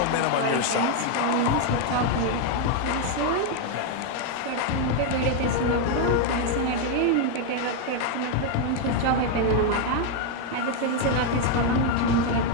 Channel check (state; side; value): different; both; correlation 0.01